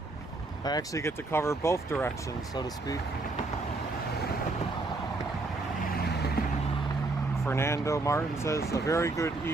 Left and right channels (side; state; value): left; quieter; 3.2 dB